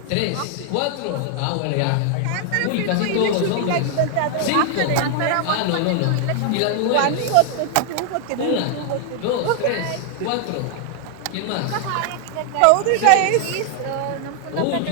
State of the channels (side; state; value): both; different; correlation 0.00